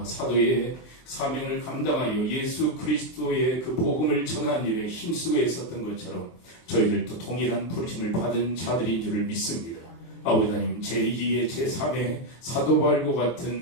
사도의 사명을 감당하여 예수 그리스도의 그 복음을 전하는 일에 힘쓰고 있었던 것처럼 저희들도 동일한 부르심을 받은 자들인 줄을 믿습니다. 아버지 하나님, 제2의 제3의 사도 바울과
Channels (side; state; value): right; late; 23 ms